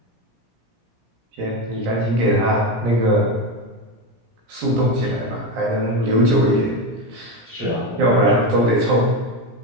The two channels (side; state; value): left; late; 17 ms